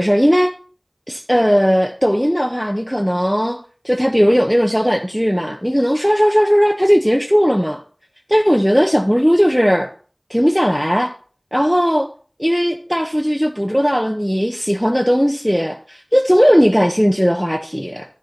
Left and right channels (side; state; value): both; identical; correlation 1.00